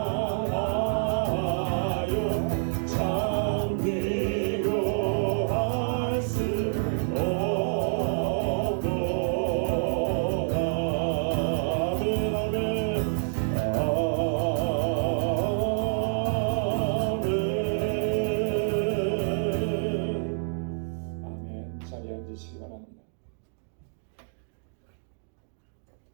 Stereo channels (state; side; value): silent; left; digital silence